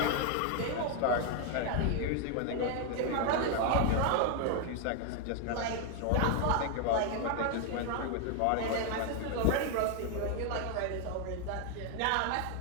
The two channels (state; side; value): different; both; correlation 0.00